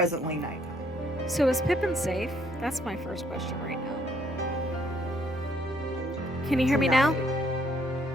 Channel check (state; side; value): noise; left; hum, 27 dB below the sound